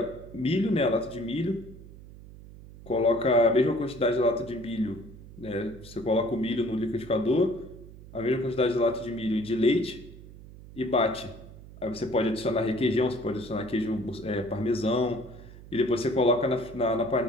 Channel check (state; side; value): noise; right; hum, 17 dB below the sound